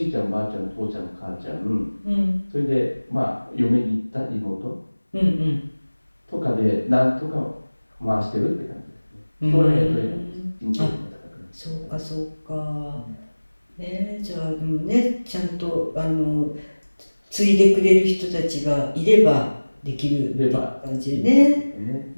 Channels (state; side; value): inverted; both; correlation -1.00